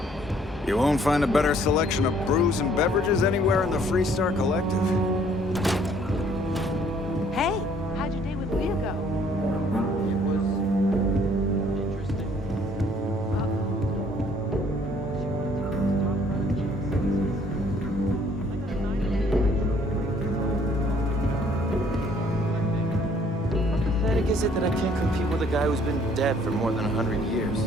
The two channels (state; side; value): normal; both; correlation 0.61